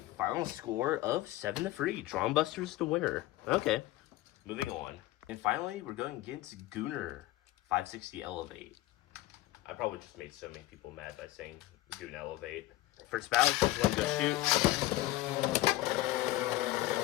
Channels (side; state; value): right; quieter; 16.8 dB